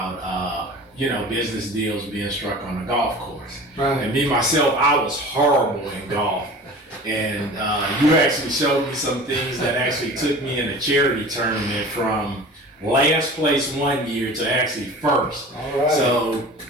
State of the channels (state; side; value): normal; both; correlation 0.39